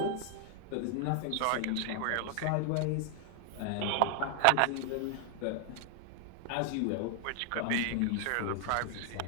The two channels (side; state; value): both; different; correlation 0.00